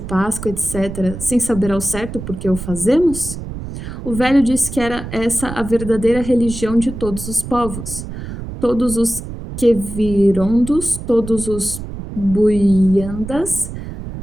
etc., sem saber ao certo por que o fazemos? O velho disse que era essa a verdadeira religião de todos os povos. Todos os Quevirondos, todos os Buiandas,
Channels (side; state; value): right; noise; rumble, 9 dB below the sound